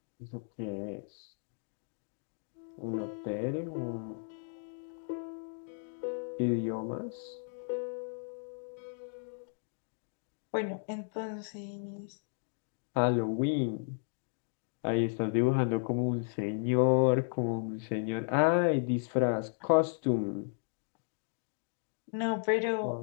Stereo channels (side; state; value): right; silent; digital silence